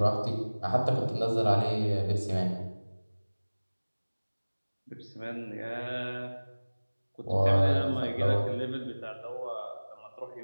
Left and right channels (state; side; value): inverted; both; correlation -1.00